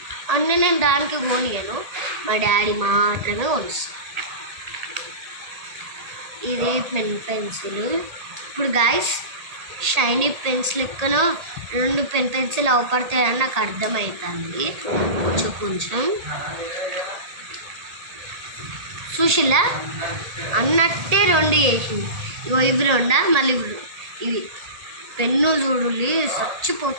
అన్నీ నేను దానికి కొనియను, మా డాడీ మాత్రమే కొనిస్తాను. ఇది పెన్సిల్. ఇప్పుడు గైస్ షైనీ పెన్స్ లెక్కన 2 పెన్సిల్ అవపడతాయని నాకు అర్థమవుతుంది. కొంచెం చూసిలా అన్నట్టే 2 చేసింది. ఇవి 2 మళ్ళీ ఇవి పెన్ను చూడులి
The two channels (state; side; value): late; left; 1.8 ms